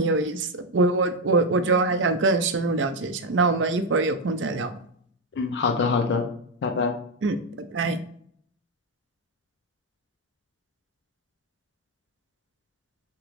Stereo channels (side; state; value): both; normal; correlation 0.05